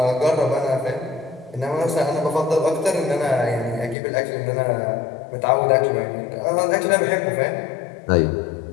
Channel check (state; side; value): drops out; right; at 4.0 s